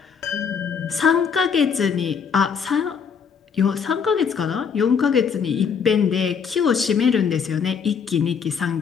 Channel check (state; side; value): quieter; right; 6.6 dB